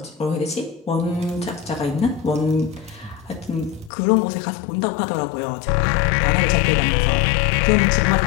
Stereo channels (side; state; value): right; drops out; at 3.9 s